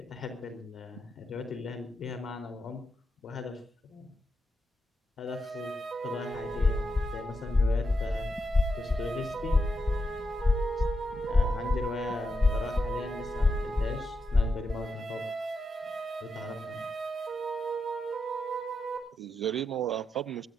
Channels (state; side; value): normal; both; correlation 0.85